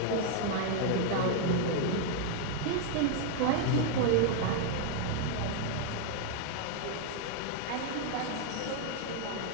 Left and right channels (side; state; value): both; different; correlation 0.00